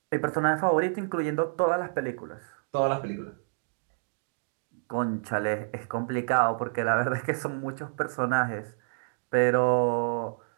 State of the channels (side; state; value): left; silent; digital silence